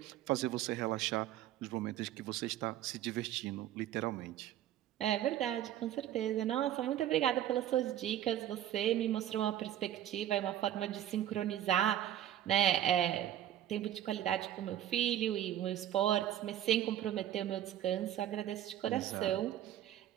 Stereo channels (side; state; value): left; quieter; 11.7 dB